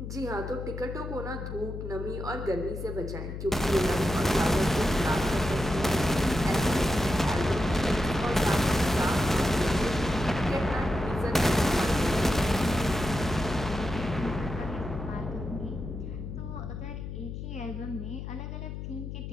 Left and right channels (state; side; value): noise; left; hum, 7 dB below the sound